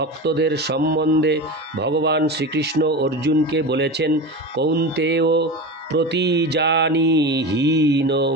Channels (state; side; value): normal; both; correlation 0.26